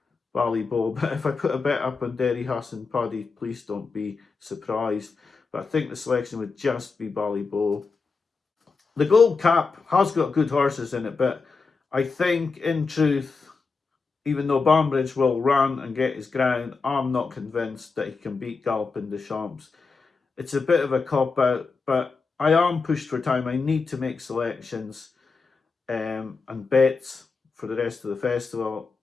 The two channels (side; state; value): right; quieter; 4.5 dB